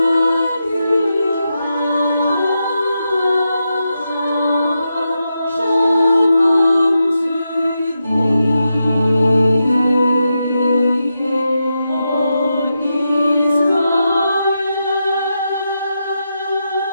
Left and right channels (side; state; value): both; inverted; correlation -0.87